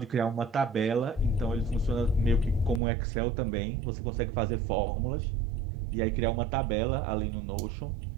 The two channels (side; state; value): left; drops out; at 2.8 s